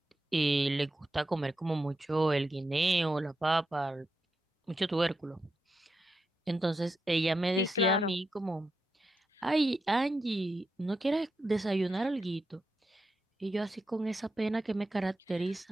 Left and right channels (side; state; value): both; normal; correlation 0.86